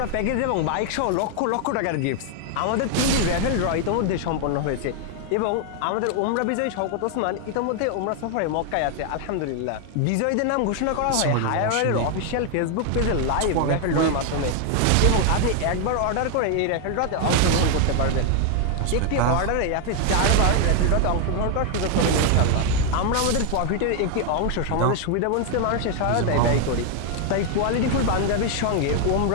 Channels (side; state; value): both; different; correlation 0.00